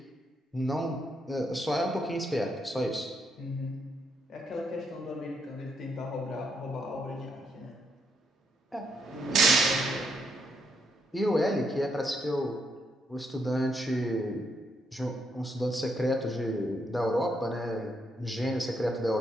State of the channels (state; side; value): normal; both; correlation 0.77